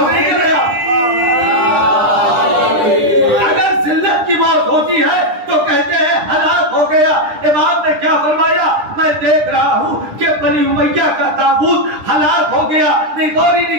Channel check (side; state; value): left; late; 9.9 ms